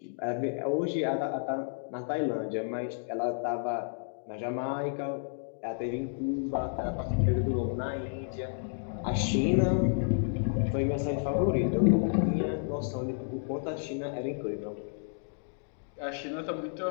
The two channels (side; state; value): right; silent; digital silence